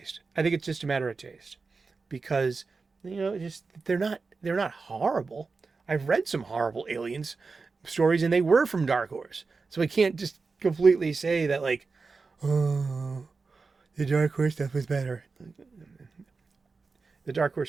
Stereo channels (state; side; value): quieter; left; 4.3 dB